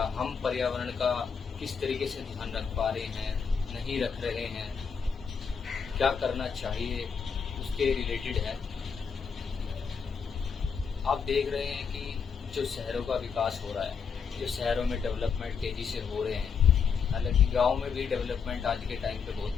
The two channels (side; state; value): right; quieter; 6.2 dB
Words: हम पर्यावरण का किस तरीके से ध्यान रख पा रहे हैं, नहीं रख रहे हैं, क्या करना चाहिए, उसके रिलेटेड है। आप देख रहे हैं कि जो शहरों का विकास हो रहा है, जो शहरों में डेवलपमेंट तेज़ी से हो रहे हैं, हालांकि गांव में भी डेवलपमेंट आज के टाइम पे बहुत